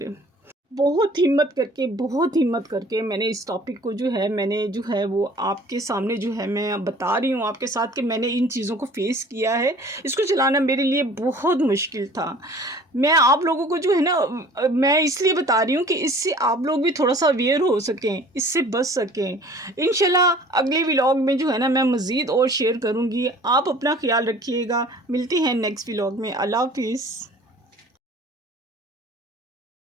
بہت ہمت کر کے میں نے اس ٹاپک کو جو ہے وہ آپ کے سامنے جو ہے میں بتا رہی ہوں آپ کے ساتھ کہ میں نے ان چیزوں کو فیس کیا ہے۔ اس کو چلانا میرے لیے بہت مشکل تھا۔ میں آپ لوگوں کو جو ہے نا میں اس لیے بتا رہی ہوں کہ اس سے آپ لوگ بھی تھوڑا سا اویئر ہو سکیں، اس سے بچ سکیں۔ انشاءاللہ اگلے ولاگ میں جو ہے نا میں مزید اور شیئر کروں گی۔ آپ اپنا خیال رکھیے گا، ملتے ہیں نیکسٹ ولاگ میں۔ اللہ حافظ۔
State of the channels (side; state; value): both; normal; correlation 0.49